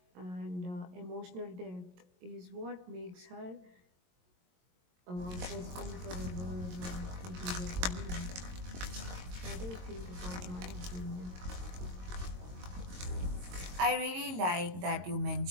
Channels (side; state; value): left; late; 22 ms